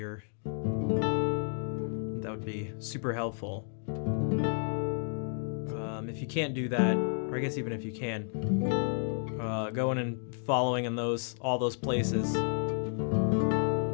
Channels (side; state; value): right; silent; 57 dB below the other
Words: that would be super helpful. If you can't do that, or I guess even if you can, going and following in all those places.